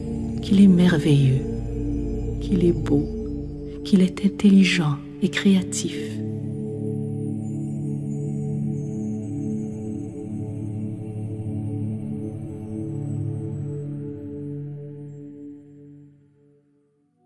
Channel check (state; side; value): identical; both; correlation 1.00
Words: qu'il est merveilleux, qu'il est beau, qu'il est intelligent et créatif.